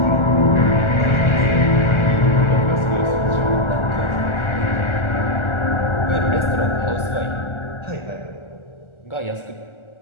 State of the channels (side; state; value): right; late; 1.4 ms